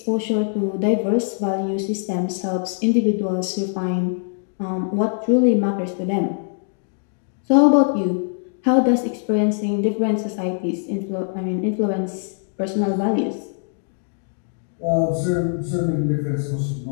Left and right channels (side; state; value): right; silent; digital silence